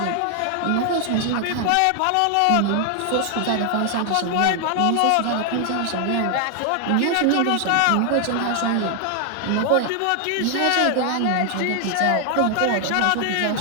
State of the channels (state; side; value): different; both; correlation 0.00